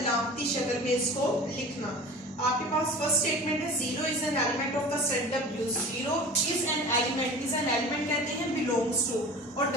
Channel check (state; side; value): normal; both; correlation 0.39